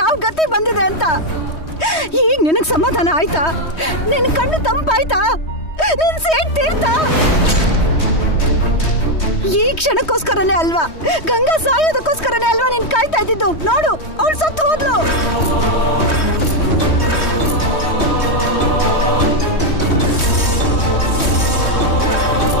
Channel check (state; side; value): late; right; 3.2 ms